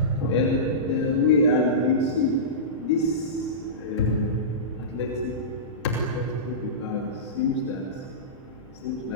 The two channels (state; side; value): normal; both; correlation -0.19